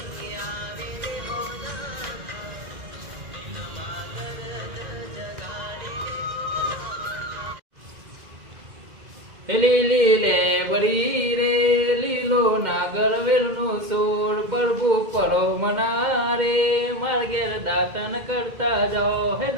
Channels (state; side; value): late; left; 2.0 ms